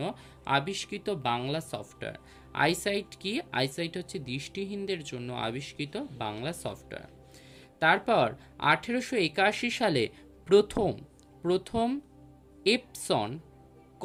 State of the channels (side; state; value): both; identical; correlation 1.00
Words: আবিষ্কৃত বাংলা সফটওয়্যার। আইসাইট কি? আইসাইট হচ্ছে দৃষ্টিহীনদের জন্য আবিষ্কৃত বাংলা সফটওয়্যার। তারপর 1881 সালে প্রথম এপসন